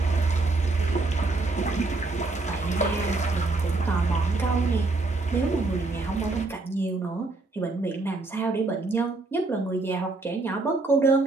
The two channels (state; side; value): quieter; left; 3.3 dB